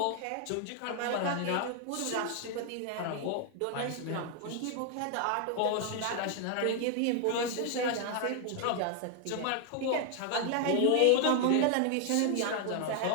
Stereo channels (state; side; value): different; both; correlation 0.00